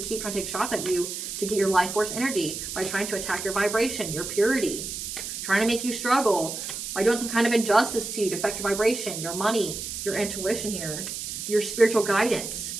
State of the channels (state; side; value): noise; right; hiss, 6 dB below the sound